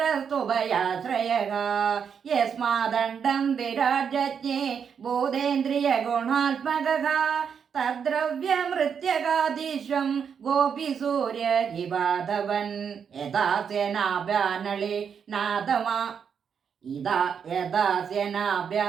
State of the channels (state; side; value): quieter; left; 7.1 dB